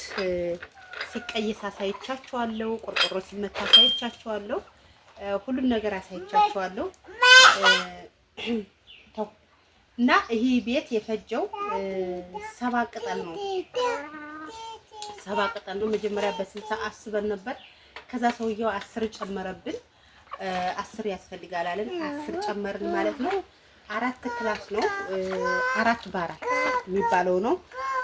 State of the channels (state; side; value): identical; both; correlation 1.00